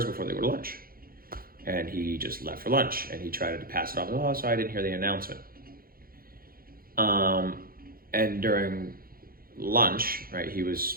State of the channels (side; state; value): left; late; 0.42 ms